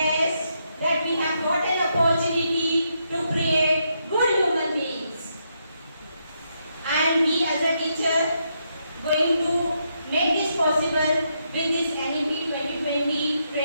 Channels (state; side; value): inverted; both; correlation -0.79